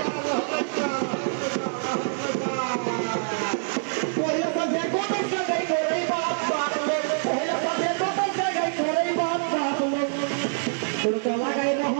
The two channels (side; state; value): left; silent; digital silence